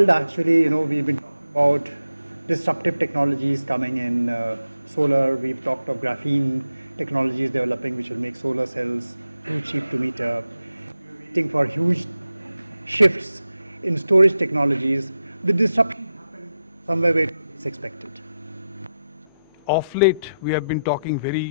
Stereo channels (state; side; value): inverted; both; correlation -0.89